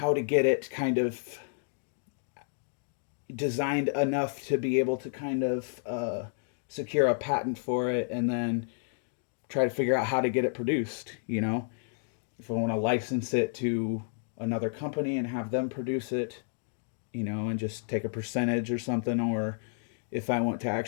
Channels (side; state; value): right; silent; digital silence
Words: to get it kind of designed enough to be able to kind of secure a patent for it, and then try to figure out how to get it produced. If I want to license it to another company and have them produce it, and just take a percentage or something, or if I want to